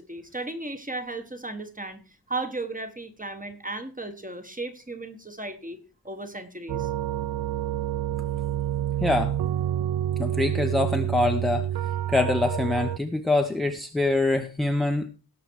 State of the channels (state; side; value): normal; both; correlation 0.60